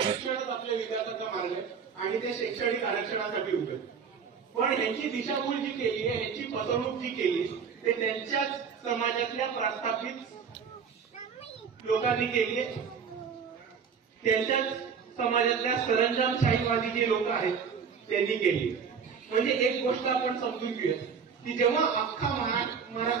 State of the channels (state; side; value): quieter; left; 6.4 dB